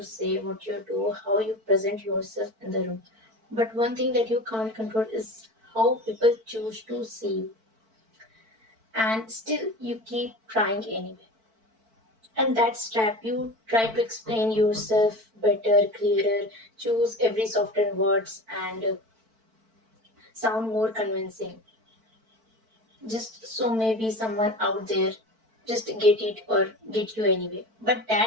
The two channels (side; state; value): left; late; 4.5 ms